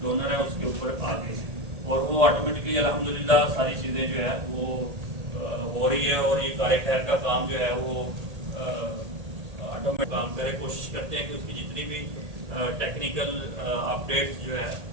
ڈونر ہے اس کے اوپر آگے ہیں اور وہ آٹومیٹکلی الحمدللہ ساری چیزیں جو ہے وہ ہو رہی ہے. اور یہ کار خیر کا کام جو ہے وہ آٹومیٹک کام کرے. کوشش کرتے ہیں کہ اس کی جتنی بھی ٹیکنیکل اپڈیٹس جو ہے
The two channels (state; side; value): late; left; 1.8 ms